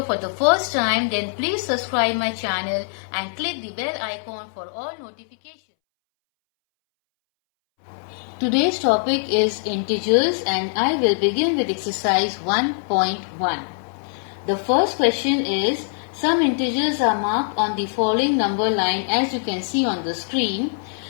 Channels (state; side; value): silent; right; 64 dB below the other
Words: for the first time, then please subscribe my channel and click the bell icon for all notifications. Today's topic is integers and I will begin with exercise 1.1. The first question is, some integers are marked on the following number line as you can see on the screen,